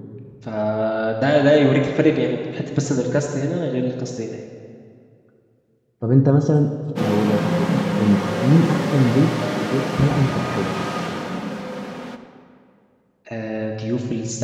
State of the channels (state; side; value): identical; both; correlation 1.00